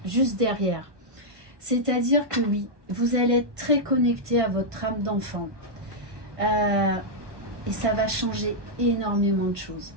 juste derrière. C'est-à-dire que oui, vous allez être très connecté à votre âme d'enfant. Et ça va changer énormément de choses.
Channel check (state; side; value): late; left; 1.2 ms